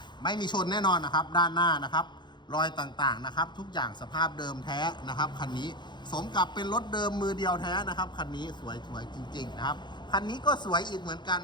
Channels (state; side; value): late; right; 0.22 ms